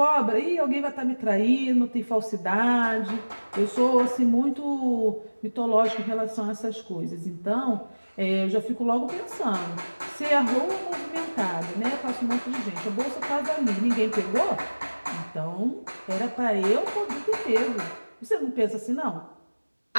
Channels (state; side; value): inverted; both; correlation -1.00